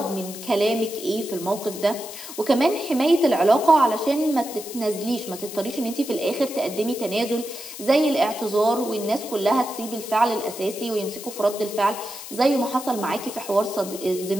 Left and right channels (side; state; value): left; noise; hiss, 12 dB below the sound